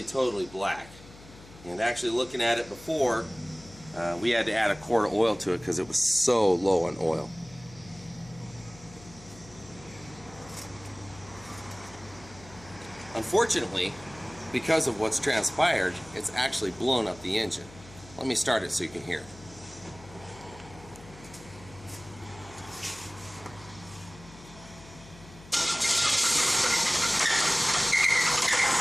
totally black. And actually looking at it before, we had to add a quart of oil to it because it was so low on oil. Unfortunately, because of what's transpired, it's actually blown up the engine. Let me start it so you can hear it.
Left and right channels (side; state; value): left; noise; hum, 20 dB below the sound